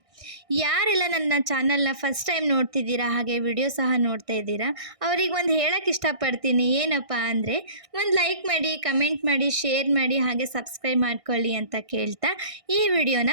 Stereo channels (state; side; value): late; left; 1.6 ms